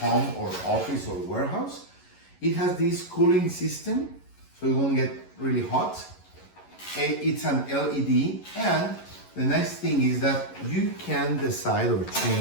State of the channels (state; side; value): late; right; 11 ms